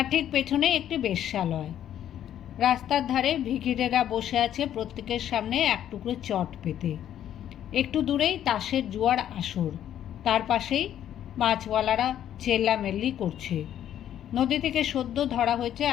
ঠিক পেছনে একটি বেশ্যালয়। রাস্তার ধারে ভিখিরেরা বসে আছে প্রত্যেকের সামনে এক টুকরো চট পেতে। একটু দূরেই তাসের জুয়ার আসর, তার পাশেই মাছওয়ালারা চেল্লামেল্লি করছে। নদী থেকে সদ্য ধরা হয়েছে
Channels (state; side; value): quieter; right; 10.8 dB